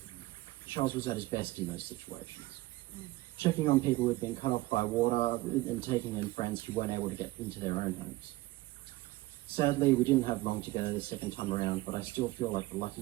Charles was at his best in those situations. Checking on people who'd been cut off by water and taking in friends who weren't able to get into their own homes. Sadly, we didn't have long to go the second time around, but I still feel like the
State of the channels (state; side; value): quieter; left; 19.6 dB